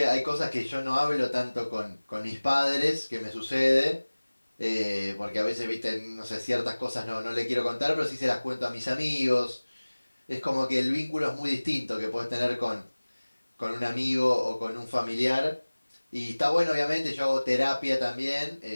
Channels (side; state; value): both; inverted; correlation -1.00